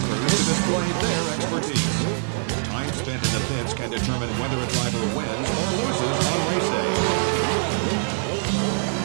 to display their expertise. Time spent in the pits can determine whether a driver wins or loses on race day.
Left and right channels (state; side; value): silent; left; digital silence